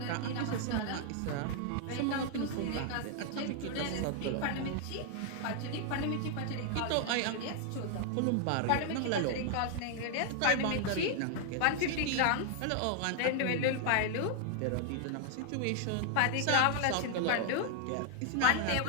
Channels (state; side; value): different; both; correlation 0.00